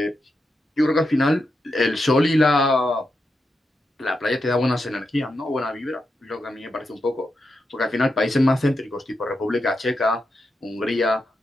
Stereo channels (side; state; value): both; normal; correlation 0.86